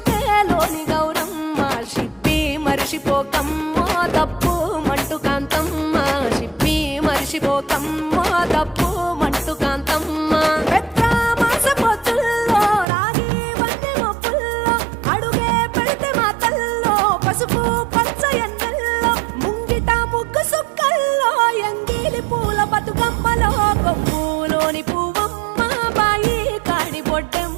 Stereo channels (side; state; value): left; drops out; at 12.9 s